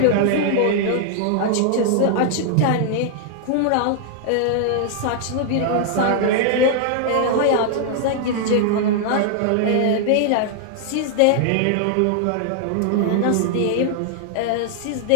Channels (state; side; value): different; both; correlation 0.00